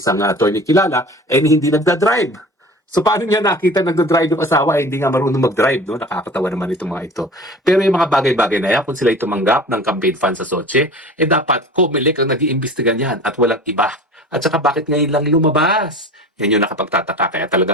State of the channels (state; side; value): normal; both; correlation 0.39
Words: attorney kilala, hindi nagda-drive. So paano niya nakita nagda-drive yung asawa hindi nga marunong mag-drive, no? Nakakatawa naman itong mga ito. Pero yung mga bagay-bagay na yan, kung sila tumanggap ng campaign funds sa Soche, dapat Comelec ang nag-iimbestiga niyan at walang iba. At saka bakit ngayon lang lumabas? Yan yung nakapagtataka. Kaya